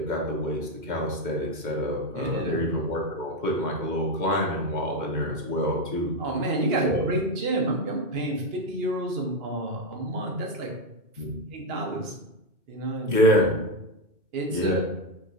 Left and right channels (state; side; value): late; left; 2.9 ms